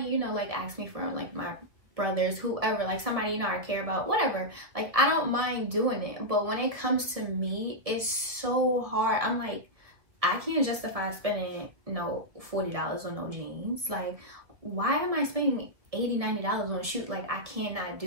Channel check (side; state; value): left; late; 1.9 ms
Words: you know, like asked me for like my brothers, whoever, like somebody, you know, I care about, whatever. Like, I don't mind doing it. But when it comes to me, it's so hard. I'm like, I can't justify spending, you know, $40 on no jeans. Like, why am I spending $80, $90 on a shoe? Like, I cannot